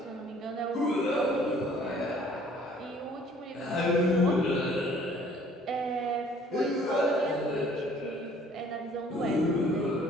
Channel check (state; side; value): normal; both; correlation 0.56